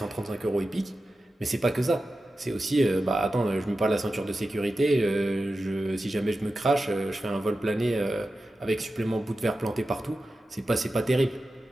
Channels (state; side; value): normal; both; correlation 0.93